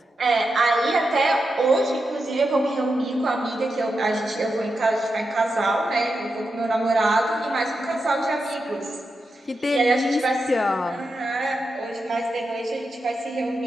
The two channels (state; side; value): normal; both; correlation 0.88